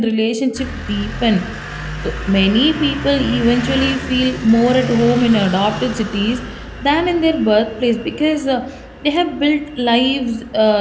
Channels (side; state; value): both; identical; correlation 1.00